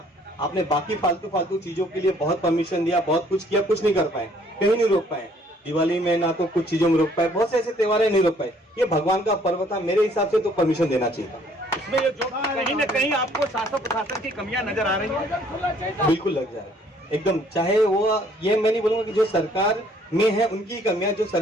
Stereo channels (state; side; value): normal; both; correlation 0.61